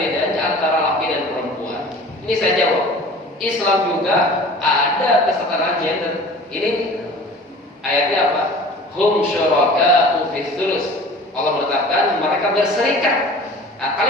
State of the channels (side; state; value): both; normal; correlation 0.43